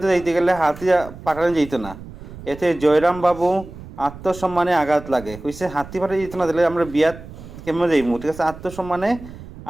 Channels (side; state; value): right; noise; rumble, 15 dB below the sound